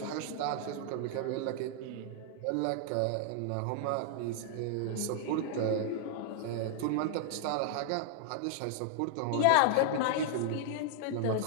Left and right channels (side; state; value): both; different; correlation -0.01